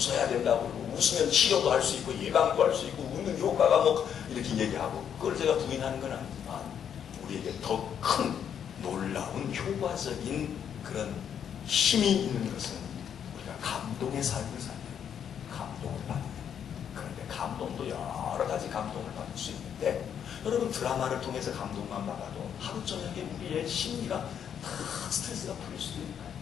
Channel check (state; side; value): quieter; right; 8.5 dB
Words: 된다고 그러고 웃으면 치료도 할 수 있고 예방도 할 수 있고 웃는 효과가 이렇게 얘기하고 그걸 제가 부인하는 건 아니지만 우리에게 더 큰 놀라운 효과적인 그런 힘이 있는 것은 우리가 감동의 삶을 사는 감동을 받는 그런데 감동도 여러 가지 감동을 받을 수 있는데 여러분 드라마를 통해서 감동만 받아도 하루 저녁에 우리의 심리가 다 스트레스가 풀릴 수도 있는 거예요.